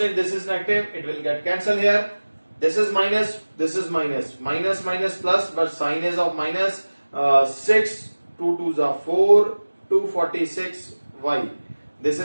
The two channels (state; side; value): inverted; both; correlation -1.00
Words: this is negative, it will get cancelled here. This is minus, this is minus. Minus minus plus, but sign is of minus. 6, 2 2s are 4, 246 y. This